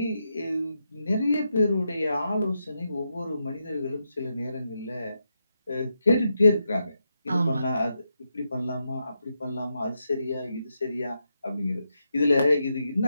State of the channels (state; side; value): inverted; both; correlation -0.84